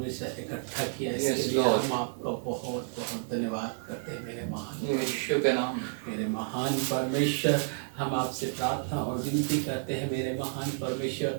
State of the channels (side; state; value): left; silent; digital silence